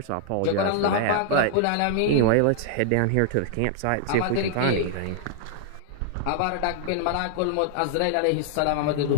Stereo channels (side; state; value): both; different; correlation -0.01